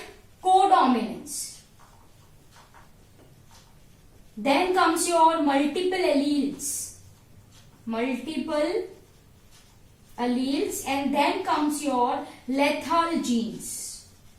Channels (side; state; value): both; identical; correlation 1.00